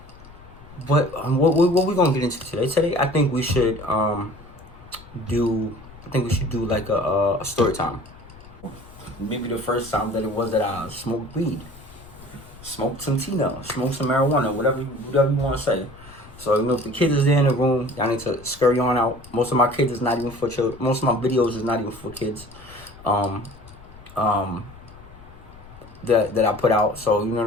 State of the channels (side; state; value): left; noise; rumble, 20 dB below the sound